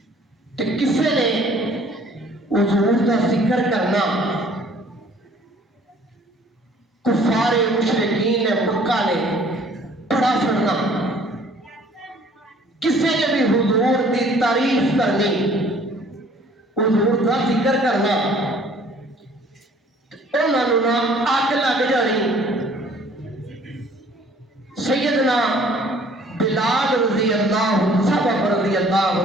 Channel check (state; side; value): normal; both; correlation 0.55